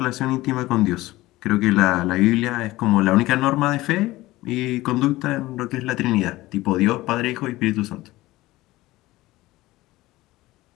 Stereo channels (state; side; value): quieter; right; 18.2 dB